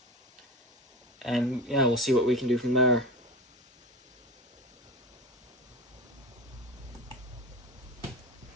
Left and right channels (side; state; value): both; normal; correlation 0.27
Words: and yeah, we'll see what we can do from there.